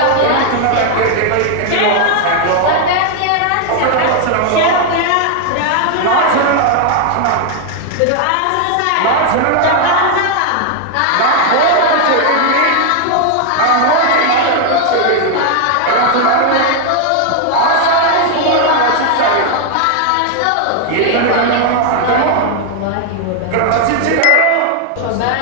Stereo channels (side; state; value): both; different; correlation 0.00